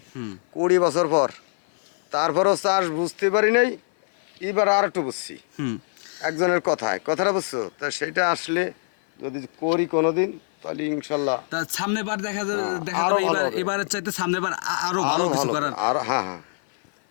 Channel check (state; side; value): silent; right; 56 dB below the other